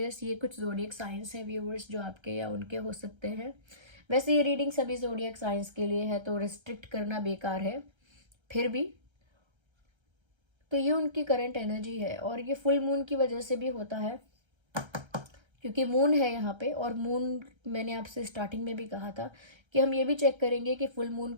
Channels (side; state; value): left; late; 1.3 ms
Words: ये कुछ जोडियक साइंस है व्यूअर्स जो आपके या उनके हो सकते हैं। वैसे ये रीडिंग सभी जोडियक साइंस के लिए है, तो रिस्ट्रिक्ट करना बेकार है, फिर भी तो ये उनकी करंट एनर्जी है। और ये फुल मून की वजह से भी होता है, क्योंकि मून है यहाँ पे, और मून मैंने आपसे स्टार्टिंग में भी कहा था कि हम ये भी चेक करेंगे कि फुल मून